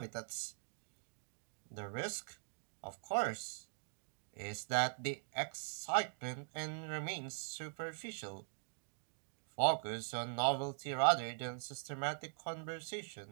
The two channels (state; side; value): silent; left; digital silence